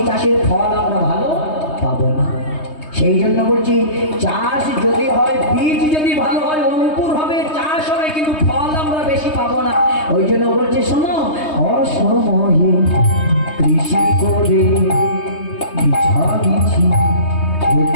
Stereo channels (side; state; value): right; late; 3.2 ms